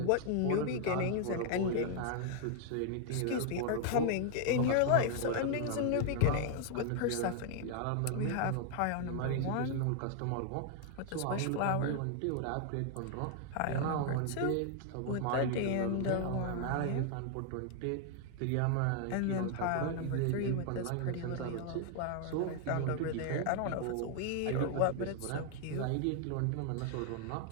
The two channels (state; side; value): different; both; correlation 0.00